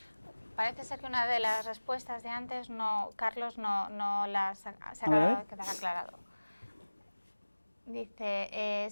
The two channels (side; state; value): both; inverted; correlation -1.00